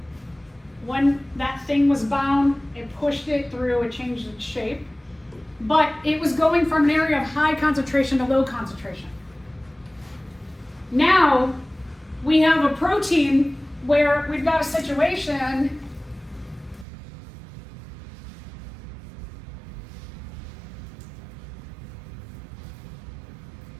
When that thing was bound, it pushed it through, it changed its shape. But it was going from an area of high concentration to low concentration. Now, we have a protein where we've got a situation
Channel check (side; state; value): left; drops out; at 16.9 s